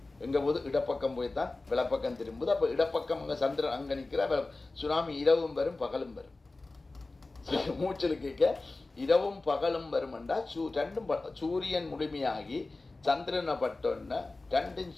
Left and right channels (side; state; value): right; quieter; 3.3 dB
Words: எங்க போது இடப்பக்கம் போய்தான் விளப்பக்கம் திரும்புது. அப்ப இடப்பக்கம் அங்க சந்திரன் அங்க நிக்கிற சுனாமி இரவும் வரும் பகலும் வரும். மூச்சல் கேட்க இரவும் பகலும் வரும் என்றா ரெண்டும் சூரியன் முழுமையாகி சந்திரனை பட்டோன்னா ரெண்டும்